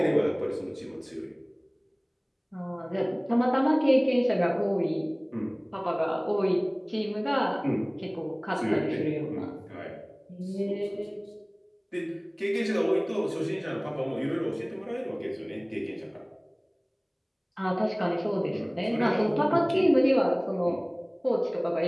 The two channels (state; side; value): identical; both; correlation 1.00